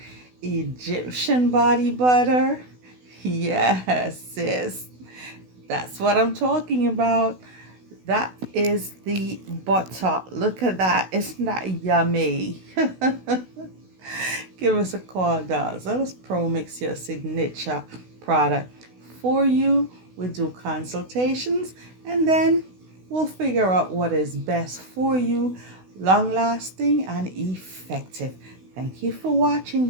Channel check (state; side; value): late; left; 16 ms